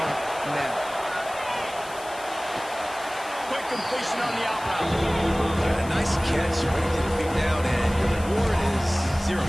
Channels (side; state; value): left; noise; hiss, 17 dB below the sound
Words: now. Quick completion on the out route. A nice catch, way to get your feet down, and your reward is 0